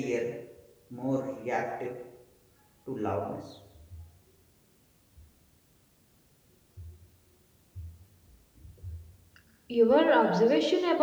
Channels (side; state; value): both; identical; correlation 1.00